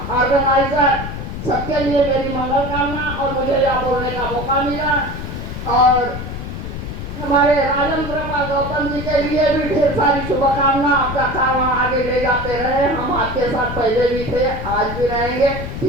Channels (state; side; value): noise; left; rumble, 7 dB below the sound